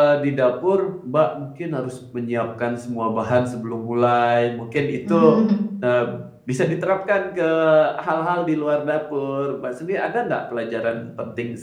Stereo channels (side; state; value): both; identical; correlation 1.00